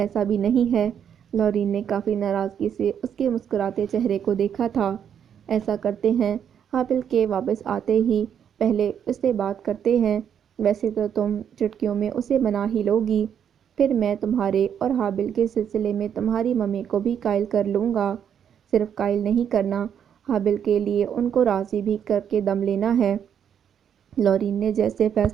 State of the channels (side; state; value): left; quieter; 8.5 dB